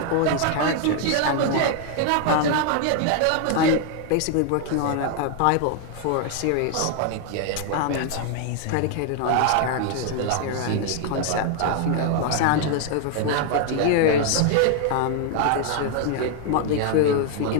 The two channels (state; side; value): different; both; correlation 0.00